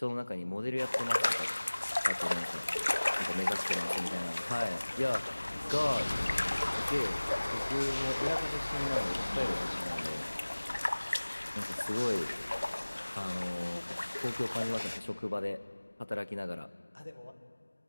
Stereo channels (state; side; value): inverted; both; correlation -1.00